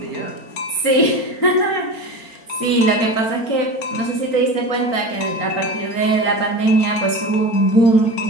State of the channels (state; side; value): late; right; 4.4 ms